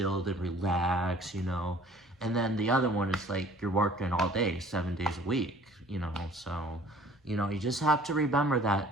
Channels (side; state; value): both; normal; correlation 0.52